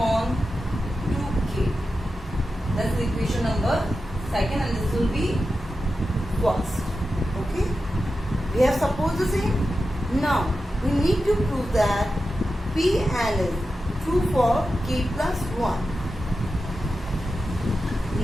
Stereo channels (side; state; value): both; normal; correlation 0.91